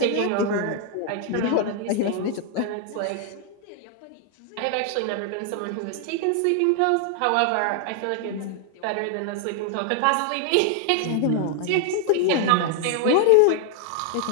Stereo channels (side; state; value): both; different; correlation 0.00